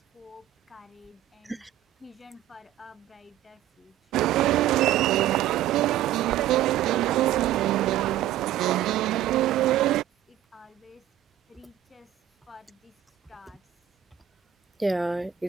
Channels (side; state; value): left; quieter; 12.6 dB